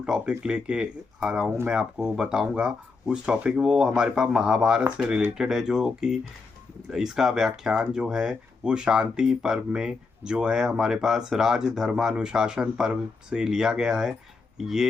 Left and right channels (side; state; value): right; quieter; 4.3 dB